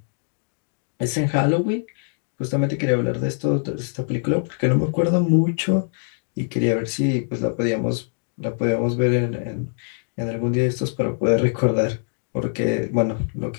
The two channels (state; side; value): silent; right; digital silence